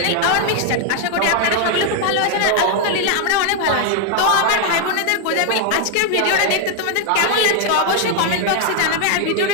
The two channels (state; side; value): different; both; correlation 0.00